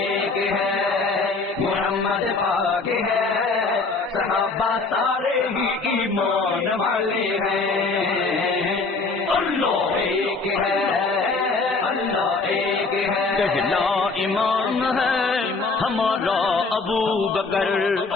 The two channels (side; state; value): right; quieter; 3.9 dB